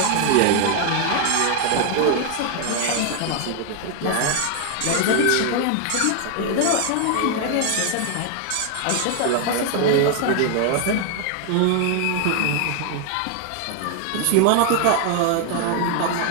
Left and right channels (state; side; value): different; both; correlation 0.00